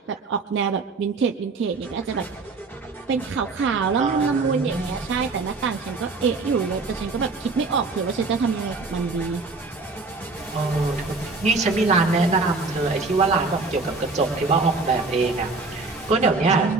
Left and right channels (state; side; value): quieter; left; 3.9 dB